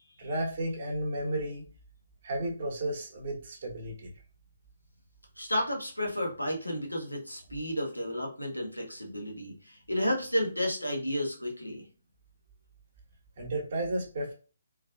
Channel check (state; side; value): inverted; both; correlation -0.83